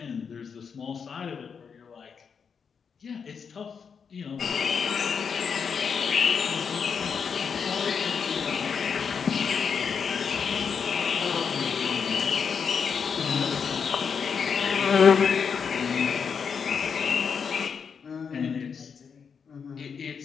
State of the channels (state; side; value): quieter; right; 6.4 dB